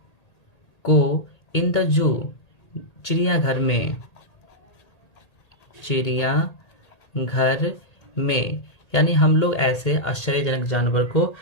को इन द जू, चिड़ियाघर में, यानी हम लोग ऐसे आश्चर्यजनक जानवर को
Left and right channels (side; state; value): right; late; 1.8 ms